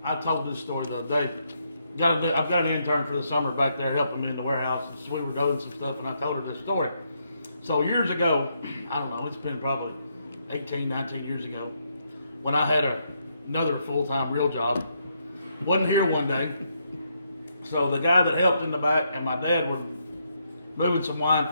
I told this story the other day. I've got an intern for the summer back there helping me in the warehouse, and so we were doing some stuff, and I told her this story. So years ago, I don't know, it's been probably 18, 19 years ago, when I had another full-time real job. Wasn't here one day. So the guy that helped in the back and my dad were moving some wine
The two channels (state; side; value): inverted; both; correlation -0.77